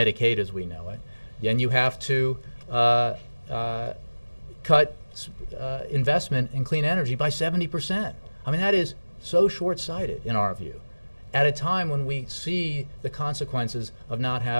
as we know it, and you have to cut investment in clean energy by 70%. I mean, that is so short-sighted in our view, at a time when we see the consequences of not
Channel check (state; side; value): inverted; both; correlation -1.00